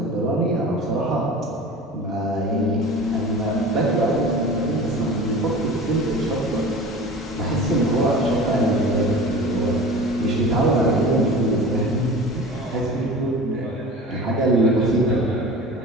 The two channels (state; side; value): normal; both; correlation 0.37